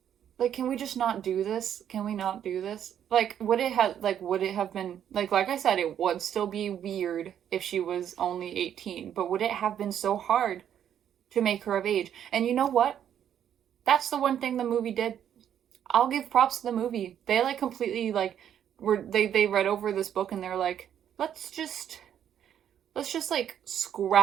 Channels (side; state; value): left; quieter; 9.7 dB